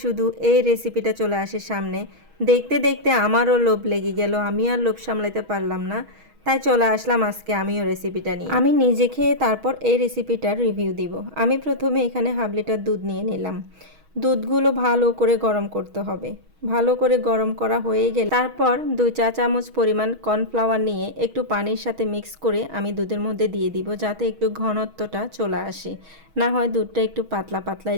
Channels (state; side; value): late; left; 6.3 ms